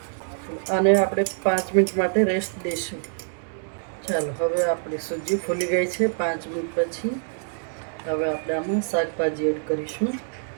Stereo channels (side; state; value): left; silent; digital silence